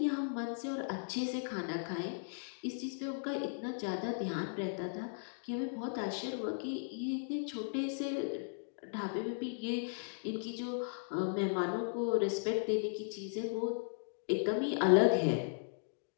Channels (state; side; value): silent; right; digital silence